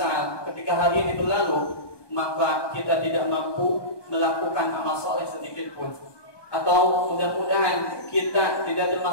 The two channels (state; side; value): late; right; 1.2 ms